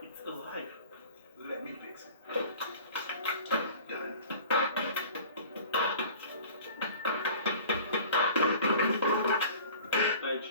It's alive. Let me fix it. Done. Like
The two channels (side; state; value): both; inverted; correlation -0.44